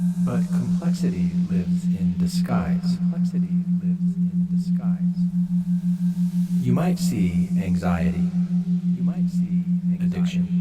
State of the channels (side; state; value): both; identical; correlation 1.00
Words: But complexity lives in disguise. You might see anxiety. Addiction.